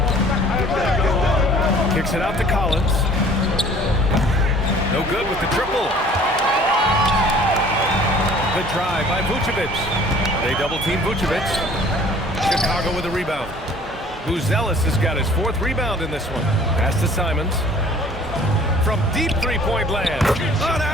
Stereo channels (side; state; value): both; normal; correlation 0.51